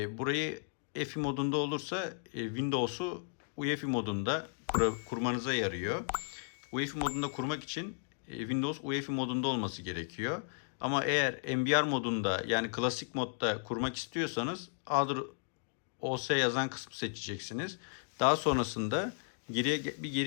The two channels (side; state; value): right; silent; digital silence